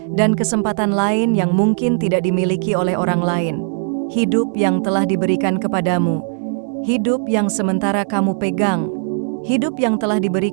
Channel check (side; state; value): left; silent; 61 dB below the other